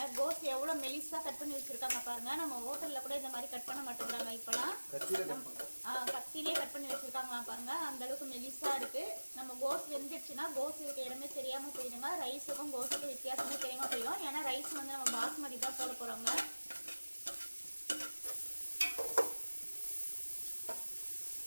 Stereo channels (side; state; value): both; inverted; correlation -1.00